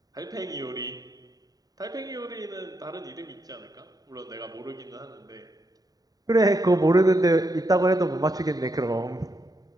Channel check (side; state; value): left; late; 0.18 ms